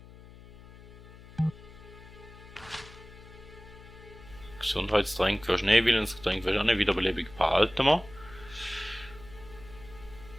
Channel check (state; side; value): noise; left; hum, 19 dB below the sound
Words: Gesundheitstränk wirst du nicht, Willensgetränk wirst du auch nicht, Wiederbelebung behalten wir.